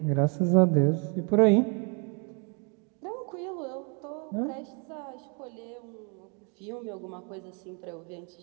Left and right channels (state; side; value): quieter; left; 36.7 dB